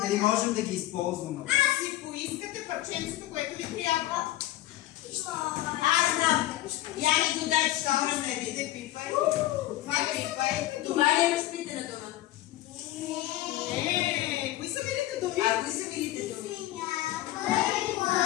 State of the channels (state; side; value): quieter; right; 15.5 dB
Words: дали можем да ги използваме. Си поискате парченцето, което ви трябва. Аз знам. Я ми го дай, че ще върне. Не пипай. Това пипай. Това ли е разпитана дума? Не, кои са милите думи? А кои са милите думи?